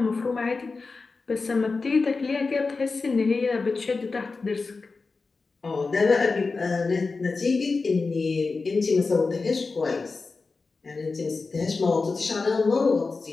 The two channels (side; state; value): right; quieter; 4.1 dB